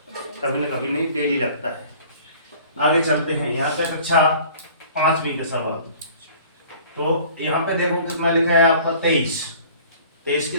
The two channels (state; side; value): inverted; both; correlation -0.49